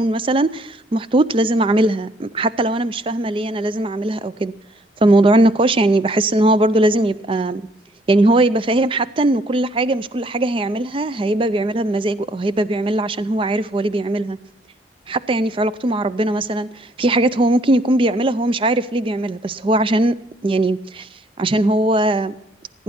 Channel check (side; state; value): both; normal; correlation 0.65